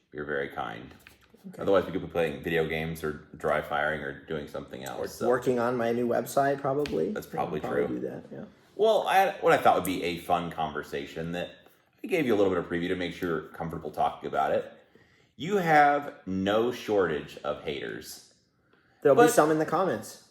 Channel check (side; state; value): both; identical; correlation 1.00